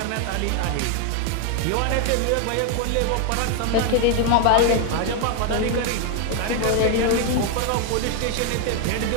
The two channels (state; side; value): different; both; correlation 0.00